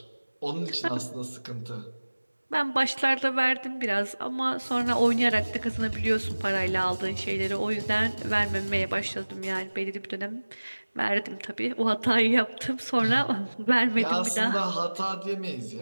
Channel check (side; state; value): both; inverted; correlation -1.00